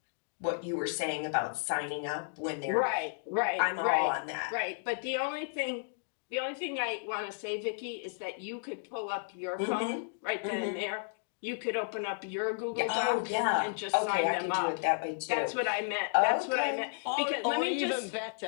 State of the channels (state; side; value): silent; right; digital silence